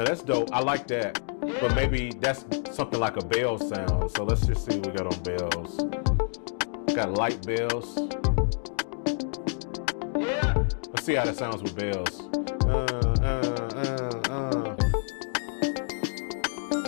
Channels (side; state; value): right; silent; 59 dB below the other